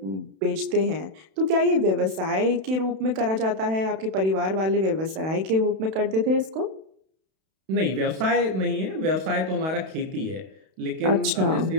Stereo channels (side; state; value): left; late; 31 ms